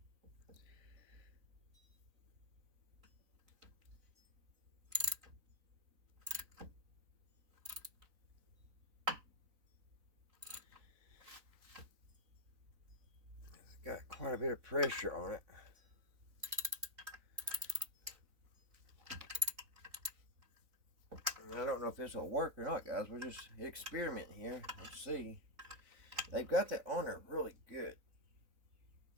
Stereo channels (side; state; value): left; late; 4.0 ms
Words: got quite a bit of pressure on it. And I don't know if this will work or not, guys. We're just experimenting here. Let's see. They've got that on there really good.